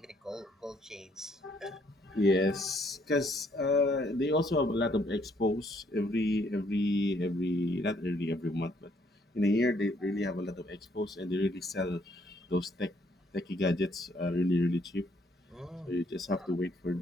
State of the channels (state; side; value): normal; both; correlation 0.68